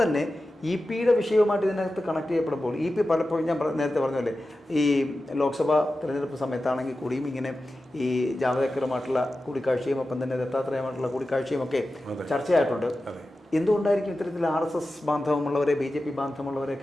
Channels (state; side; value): normal; both; correlation 0.93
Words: തന്നെ EP-യുടെ വിഷയവുമായിട്ട് ഇതിനകത്ത് കണക്ട് ചെയ്യപ്പെടുമ്പോൾ EP പലപ്പോഴും ഞാൻ നേരത്തെ പറഞ്ഞല്ലേ ഈ ലോക്സഭാ തിരഞ്ഞെടുപ്പ് സമയത്താണെങ്കിൽ കൂടിയും ഇങ്ങനെ ഈ ജാവദേക്കറുമായിട്ടുള്ള കൂടിക്കാഴ്ചയും ഒപ്പം തന്നെ ദത്താത്രേയമായിട്ടുള്ള കൂടിക്കാഴ്ചയും ഒക്കെ ചർച്ചയായിട്ടുണ്ട്. എന്തുകൊണ്ടായിരിക്കും ഇത്തരത്തിൽ RSS ബാന്ധവമുള്ളവരെ BJP